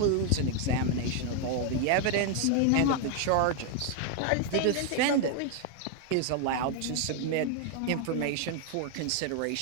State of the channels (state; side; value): different; both; correlation 0.00